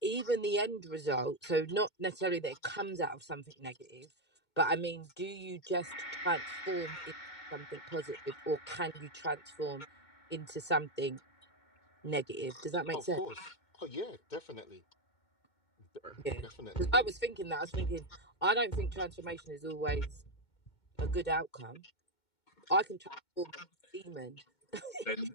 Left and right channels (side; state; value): right; late; 2.2 ms